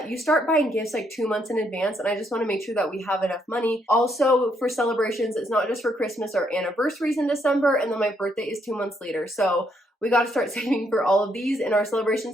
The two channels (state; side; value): normal; both; correlation 0.74